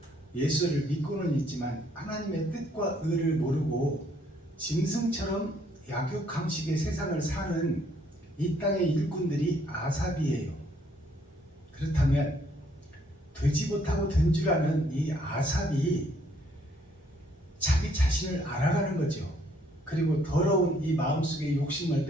예수를 믿고는 있지만 하나님의 뜻과 의를 모르고 짐승처럼 약육강식의 세상을 사는 이 땅의 일꾼들이 아삽이에요. 그렇다면 되지 못하고 된 줄 아는 이 아삽이 자기 자신을 알아가는 거죠. 그리고 더러운 이 마음속의 욕심을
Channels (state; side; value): normal; both; correlation 0.66